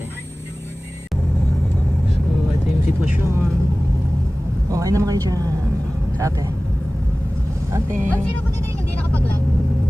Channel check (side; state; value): both; normal; correlation 0.98